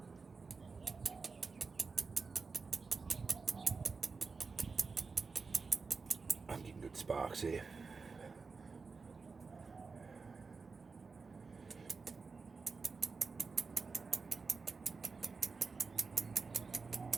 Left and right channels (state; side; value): quieter; left; 4.6 dB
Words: I'm getting good sparks here.